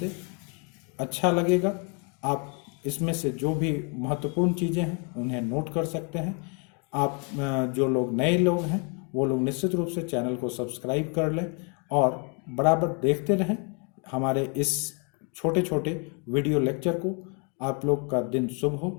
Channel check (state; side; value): quieter; right; 37.0 dB